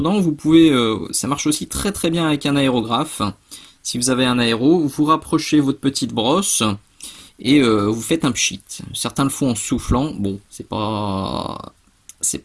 vous pouvez, ça marche aussi très très bien avec un aérographe. Si vous avez un aéro, vous rapprochez votre petite brosse et vous faites un pchit. Certains le font en soufflant. Bon, c'est pas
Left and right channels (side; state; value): both; identical; correlation 1.00